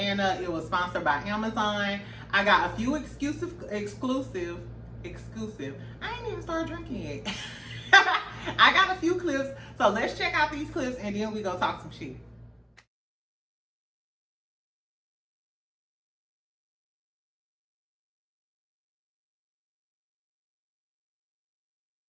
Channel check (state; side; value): identical; both; correlation 1.00